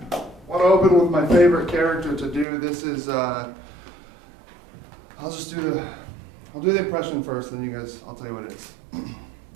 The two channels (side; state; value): left; drops out; at 2.5 s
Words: I want to open with my favorite character to do. This is, I'll do the impression first, then you guys, I'll tell you what it is.